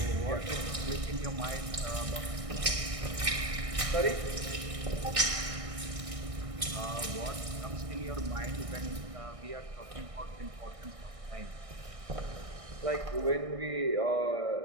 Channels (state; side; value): late; left; 1.6 ms